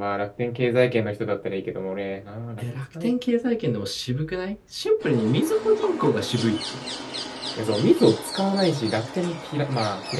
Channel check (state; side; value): identical; both; correlation 1.00